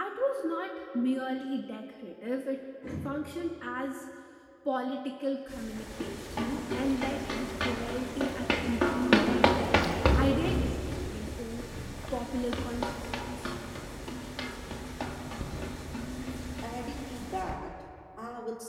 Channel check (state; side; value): identical; both; correlation 1.00